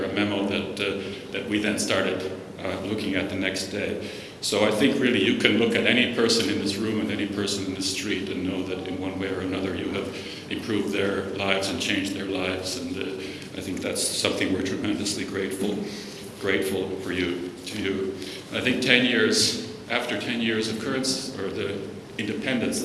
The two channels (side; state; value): both; identical; correlation 1.00